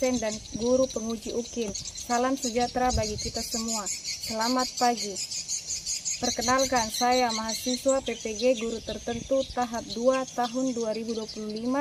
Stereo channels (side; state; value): both; identical; correlation 1.00